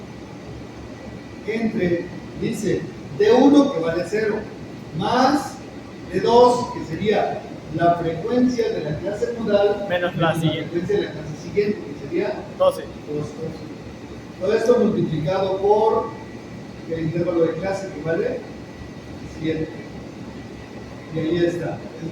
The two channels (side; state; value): both; identical; correlation 1.00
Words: Entre, dice, de 1 que vale 0, más de 2 que sería la frecuencia de la clase modal Menos la siguiente. frecuencia de la clase siguiente, que sería 12. 2. Todo esto multiplicado por el intervalo de clase que vale 7. Y ahí está.